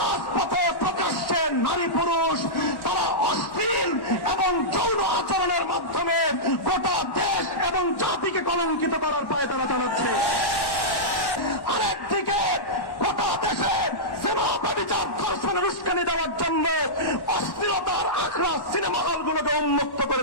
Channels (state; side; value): late; right; 1.1 ms